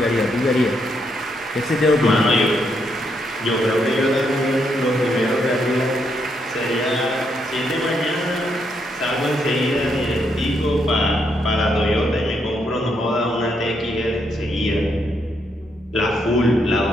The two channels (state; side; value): normal; both; correlation 0.77